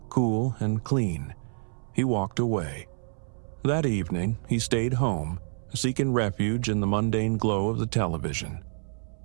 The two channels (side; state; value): left; silent; 59 dB below the other